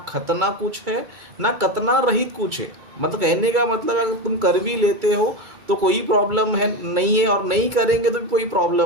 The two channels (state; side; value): late; left; 2.3 ms